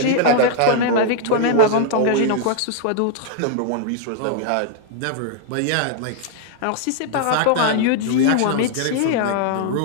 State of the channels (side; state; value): both; different; correlation 0.00